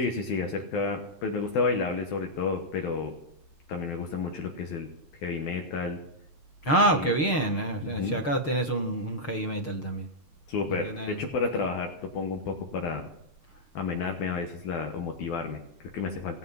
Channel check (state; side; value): late; right; 6.6 ms